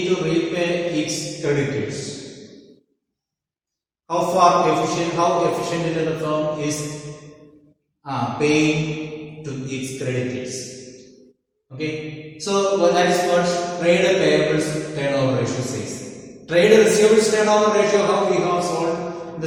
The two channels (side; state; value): both; identical; correlation 1.00